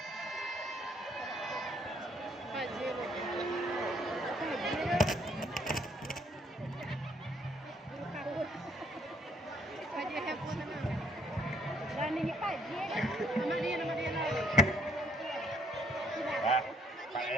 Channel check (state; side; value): normal; both; correlation 0.68